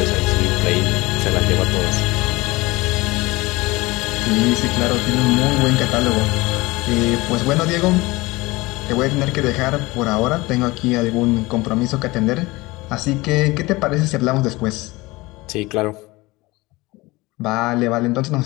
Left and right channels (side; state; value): right; quieter; 21.6 dB